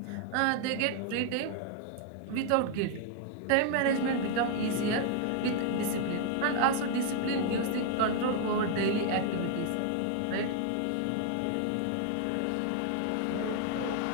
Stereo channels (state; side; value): different; both; correlation 0.00